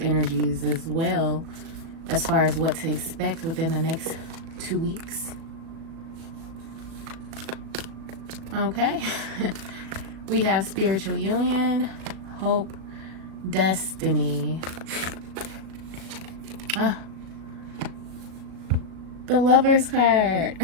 as well, as far as what to expect within the next 2 weeks. Okay. We have spiritual union, hope, destiny. The Lover's card,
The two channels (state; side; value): late; left; 37 ms